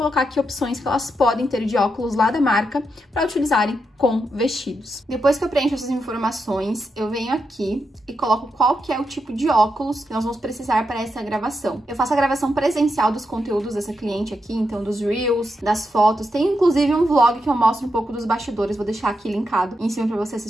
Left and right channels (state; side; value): normal; both; correlation 0.84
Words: aqui opções que elas podem ter de óculos lá da marca para utilizarem com vestidos. Depois que eu preencho essas informações, eu venho aqui e coloco qual que é o tipo de óculos que nós vamos precisar para essa gravação. Eu faço a gravação presencial dos conteúdos dessa cliente aqui, então dos Reels, das fotos. Tem inclusive um vlog que eu mostro um pouco dos bastidores, vou deixar aqui linkado em cima para você